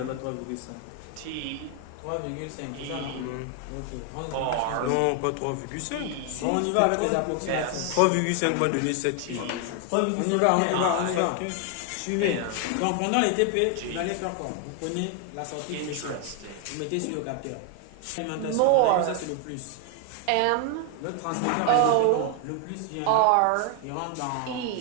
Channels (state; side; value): different; both; correlation 0.00